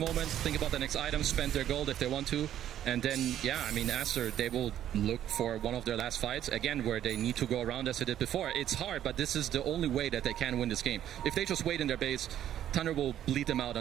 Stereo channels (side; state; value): left; quieter; 11.2 dB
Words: think about the next item, spend their gold if they want to, and then, yeah, I mean, Aster, they will look for one of their last fights, again, where they need to go around as they did before. It's hard, but this is the only way that they can win this game. If they just wait in their base, Tundra will bleed them out